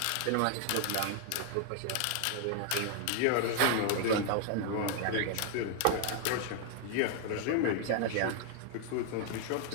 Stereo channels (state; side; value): different; both; correlation 0.00